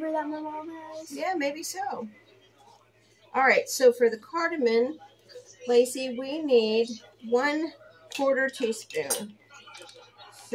that my mom has. Yeah, maybe so. All right, so for the cardamom, Lacey, we need 1/4 teaspoon.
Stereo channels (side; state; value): both; identical; correlation 1.00